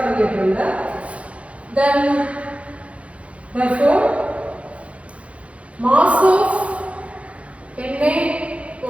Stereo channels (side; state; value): left; late; 0.063 ms